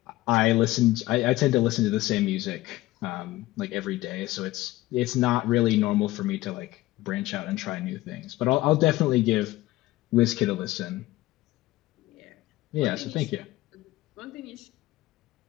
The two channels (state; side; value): quieter; right; 17.5 dB